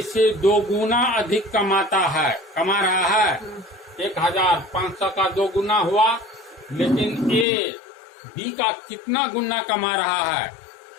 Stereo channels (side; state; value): right; drops out; at 7.5 s